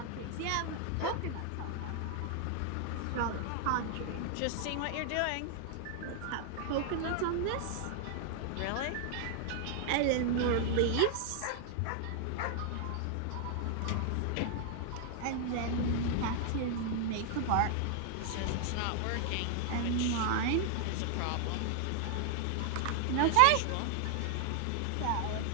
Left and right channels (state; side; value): different; both; correlation 0.00